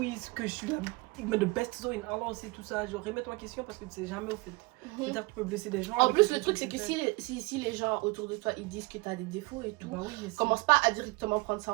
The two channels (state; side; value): quieter; left; 25.2 dB